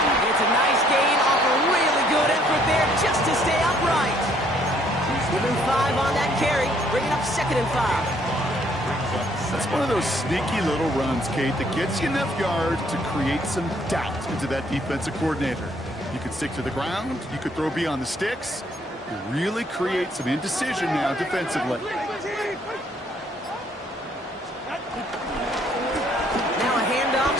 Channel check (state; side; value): normal; both; correlation 0.65